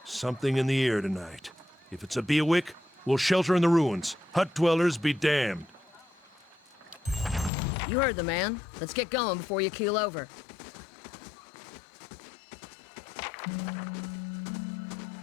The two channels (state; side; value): drops out; right; at 7.5 s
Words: Something in the air tonight. If it's a Bewick, we'll shelter in the ruins. Hut dwellers be damned. You heard the man. Let's get going before you keel over.